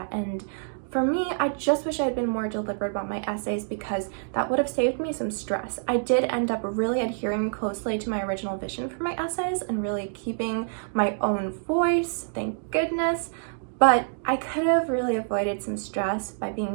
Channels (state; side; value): silent; left; digital silence